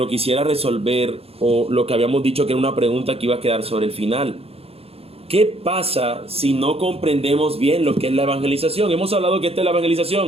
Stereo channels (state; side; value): late; left; 0.29 ms